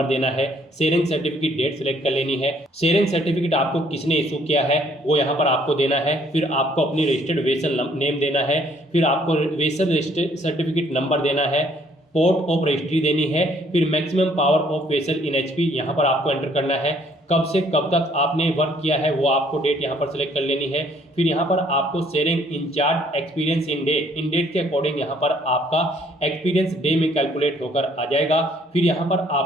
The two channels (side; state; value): both; normal; correlation 0.63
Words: देना है, सेरेंग सर्टिफिकेट डेट सेलेक्ट कर लेनी है, सेरेंग सर्टिफिकेट आपको किसने इशू किया है वो यहाँ पर आपको देना है, फिर आपको अपनी रजिस्टर्ड वेसल नेम देना है, फिर आपको वेसल रजिस्टर्ड सर्टिफिकेट नंबर देना है, पोर्ट ऑफ रजिस्ट्री देनी है, फिर maximum power of vessel in HP यहाँ पर आपको एंटर करना है, कब से कब तक आपने वर्क किया है वो आपको डेट यहाँ पर सेलेक्ट कर लेनी है, फिर यहाँ पर आपको सेरेंग इंचार्ज एक्सपीरियंस इन डेट के अकॉर्डिंग यहाँ पर आपका एक्सपीरियंस डे में कैलकुलेट होकर आ जाएगा। फिर यहाँ पर